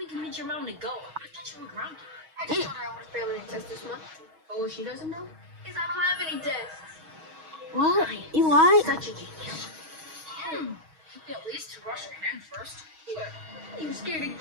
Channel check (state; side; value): late; left; 6.3 ms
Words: even convince your mom to go? I thought you were grounded. I just told her I would fail any test this month. Oh, what she doesn't know is I don't have any tests. What? You what? Such a genius. At least to wash your hands first. You scared of